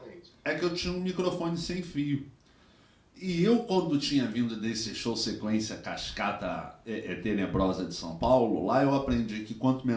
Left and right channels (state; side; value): identical; both; correlation 1.00